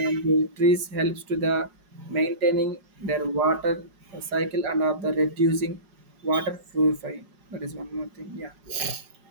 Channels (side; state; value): left; late; 4.9 ms